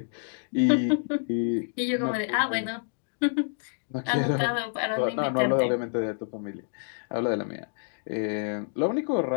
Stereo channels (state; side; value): silent; right; digital silence